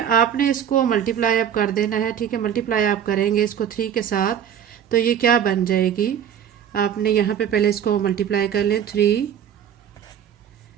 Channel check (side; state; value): left; quieter; 9.1 dB